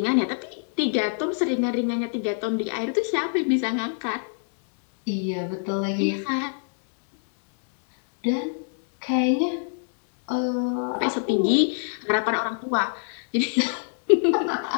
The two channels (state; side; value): silent; right; digital silence